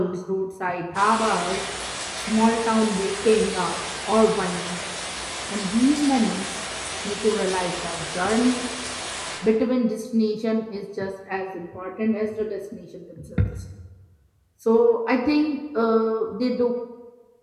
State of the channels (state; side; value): identical; both; correlation 1.00